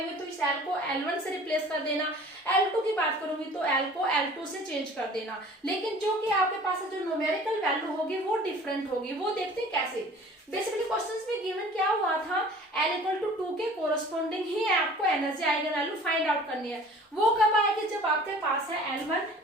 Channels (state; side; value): normal; both; correlation 0.47